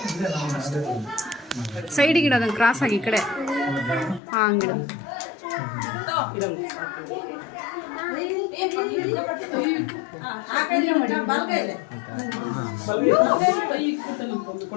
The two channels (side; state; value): right; drops out; at 4.2 s